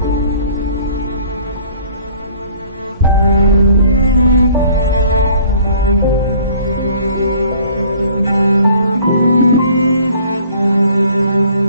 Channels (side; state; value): both; inverted; correlation -0.55